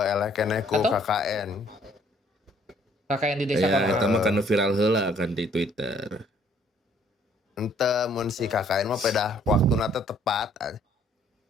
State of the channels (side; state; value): both; normal; correlation 0.62